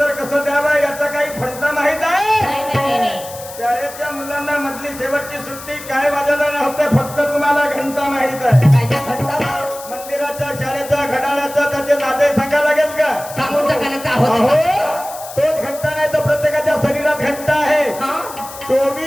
कसं द्यावं याचा काही फंटा माहित आहे? नाही नाही नाही नाही. शाळेच्या मुलांना मधली शेवटची सुट्टी काय वाजायला नव्हते, फक्त तुम्हाला घंटा माहित आहे. काय त्या घंटा बा? मंदिराच्या शाळेच्या घड्याळाचा त्याचे नाते सांगा लागेल का? सांगून टाकायला अहो आहोत. तोच घंटा नाही तर प्रत्येकाच्या शरीरात घंटा आहे. हा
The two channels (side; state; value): left; noise; hiss, 14 dB below the sound